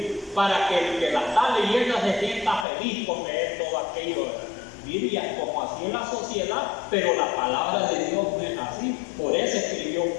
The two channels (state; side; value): drops out; right; at 2.7 s